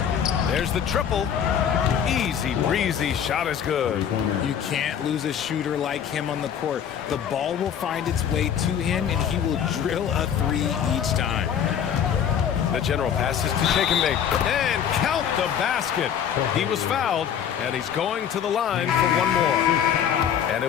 There's the triple. Easy breezy, shot is good. You can't lose a shooter like him on the court. The ball will find its way to him, and he will drill a three each time. The general passes to shake and bake. And count the basket. He was fouled, and he's going to the line for one more. And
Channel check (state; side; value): quieter; right; 8.7 dB